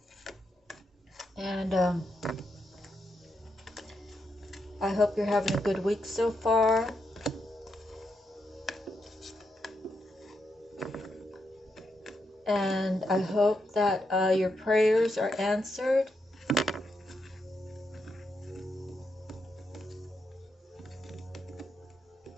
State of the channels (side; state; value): both; normal; correlation 0.82